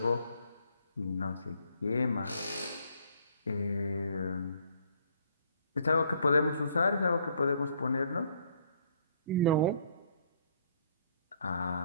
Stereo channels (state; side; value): inverted; both; correlation -0.64